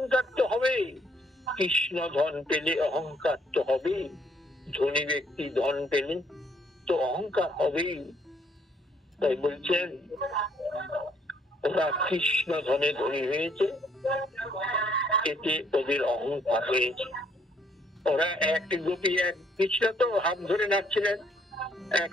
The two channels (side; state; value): both; normal; correlation 0.66